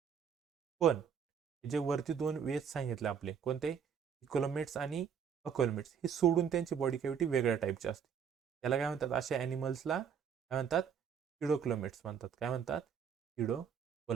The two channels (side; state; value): left; quieter; 7.4 dB